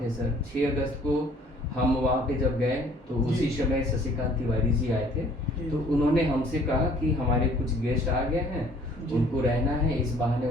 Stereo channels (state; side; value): normal; both; correlation 0.56